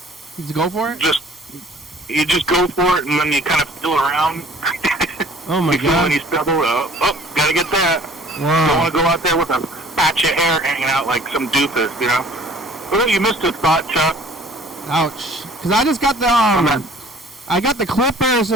You just go for it? You just go for it, and then you kind of feel around. Oh my god! When you stumble, gotta get that. Wow. Don't want to go out there with a patch of hair hanging out like some doofus, you know. Well, you missed a thought, Chuck. Ouch! Because I just got the I got the clippers,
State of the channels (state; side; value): normal; both; correlation 0.52